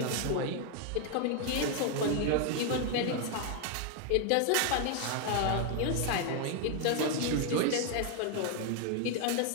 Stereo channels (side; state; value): both; different; correlation 0.01